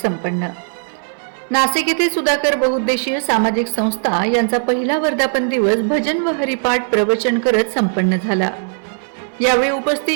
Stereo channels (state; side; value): silent; left; digital silence